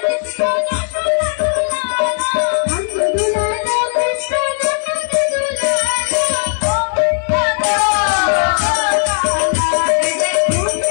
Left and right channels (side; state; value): right; silent; digital silence